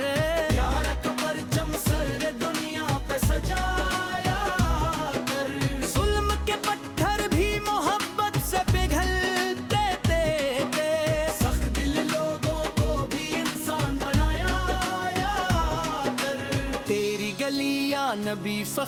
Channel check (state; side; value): identical; both; correlation 1.00